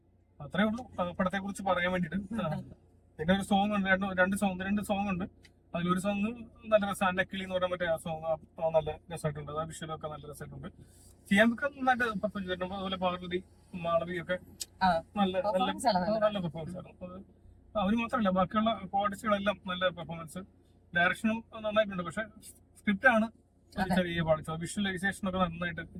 അത്രേ ഉള്ളൂ പടത്തെ കുറിച്ച് പറയാൻ വേണ്ടിട്ട്. പിന്നെ ഒരു സോങ് ഉണ്ട്, രണ്ട് സോങ് ഉണ്ട്. അതിലൊരു സോങ് നല്ല രസം, അന്നക്കിളി എന്ന് പറഞ്ഞ മറ്റേ ആ സോങ് നല്ല രസമായിട്ടുണ്ട്. ആ വിഷ്വലൊക്കെ നല്ല രസമായിട്ടുണ്ട്. ചെയ്യാനൊക്കെ നന്നായിട്ട് പെർഫോം ചെയ്തിട്ടുണ്ട്. അതുപോലെ പാർവതി, മാളവി ഒക്കെ നല്ല പെർഫോമൻസ് ആയിരുന്നു. അവര് മാത്രമല്ല, ബാക്കിയുള്ള കോർഡിസ്റ്റുകളെല്ലാം നല്ല പെർഫോമൻസ്. ഡയറക്ഷനും നന്നായിട്ടുണ്ട്. പക്ഷെ സ്ക്രിപ്റ്റ് ആണ് ചെറിയ പാടിച്ചത്. വിഷ്വലൈസേഷൻ ഒക്കെ നന്നായിട്ട്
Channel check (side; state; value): both; identical; correlation 1.00